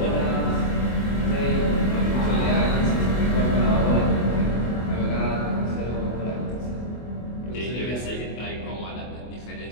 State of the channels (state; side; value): late; right; 24 ms